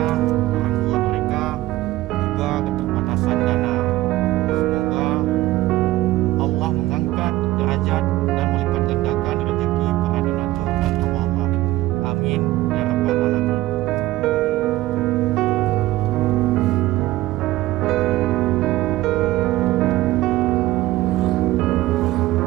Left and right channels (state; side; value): quieter; left; 16.9 dB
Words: orang tua mereka juga keterbatasan dana. Semoga Allah mengangkat derajat dan melipat gandakan rezeki para donatur dan hamba Allah. Amin ya rabbal alamin.